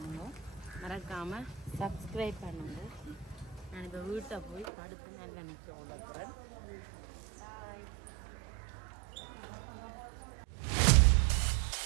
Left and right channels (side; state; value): left; drops out; at 4.7 s